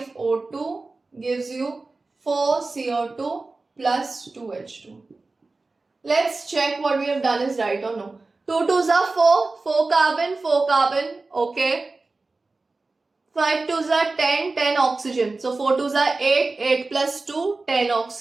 gives you 4CO2 plus 2H2. Let's check what we have done is right or no. 2 2s are 4, 4 carbon, okay. 5 2s are 10, 10 oxygen. So 4 2s are 8, 8 plus 2, 10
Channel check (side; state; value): left; quieter; 3.5 dB